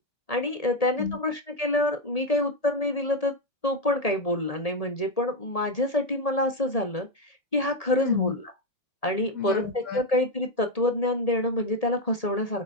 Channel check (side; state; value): right; late; 1.8 ms